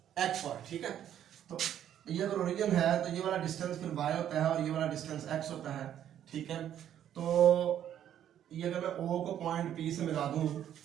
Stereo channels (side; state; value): left; quieter; 10.5 dB